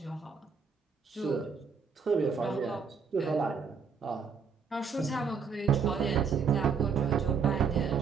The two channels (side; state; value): left; quieter; 5.9 dB